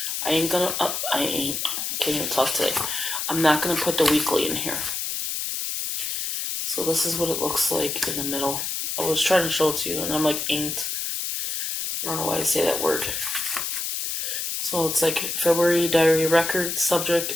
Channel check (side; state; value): left; noise; hiss, 2 dB below the sound